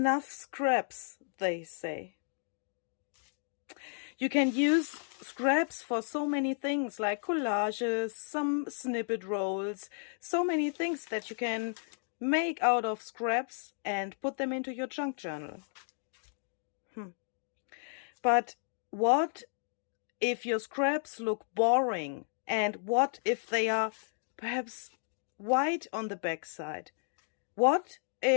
scraps, they say. You can use scraps for so many things, like collages, some snippet rolls, so many things that you can make out of scraps and put them into your junk journal. But what if your scraps look boring? And what if they are perhaps white on the backside? What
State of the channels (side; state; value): right; silent; 56 dB below the other